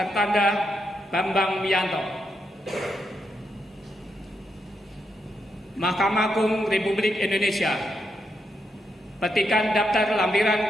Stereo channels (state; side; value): normal; both; correlation 0.81